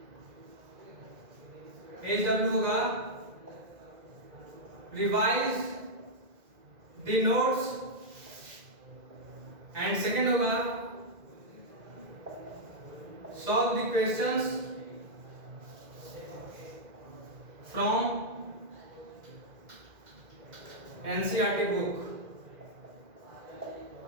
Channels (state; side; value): late; left; 2.1 ms